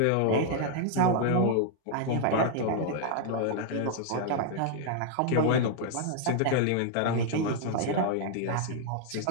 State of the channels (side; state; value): both; different; correlation 0.00